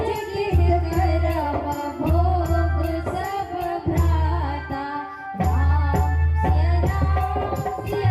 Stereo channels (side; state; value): both; identical; correlation 1.00